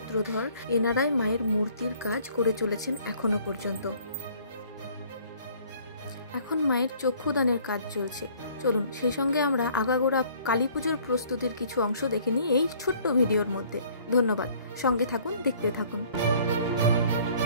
এনারাই মায়ের মূর্তির কাজ করে চলেছেন এখনো পর্যন্ত। এখন মায়ের চক্ষুদানের কাজ চলছে। চলুন সেই সঙ্গে আমরা আগাগোড়া কালী পুজোর প্রস্তুতির কিছু অংশ দেখে নিই এই ছোট্ট ভিডিওর মধ্যে। ধন্যবাদ, সঙ্গে থাকুন, দেখতে থাকুন।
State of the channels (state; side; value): inverted; both; correlation -0.57